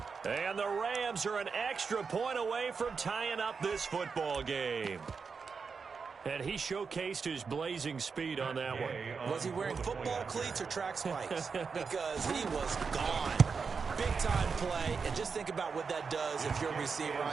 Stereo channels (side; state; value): left; quieter; 5.3 dB